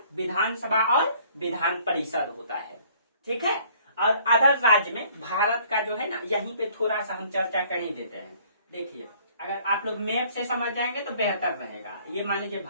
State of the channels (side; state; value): both; inverted; correlation -0.58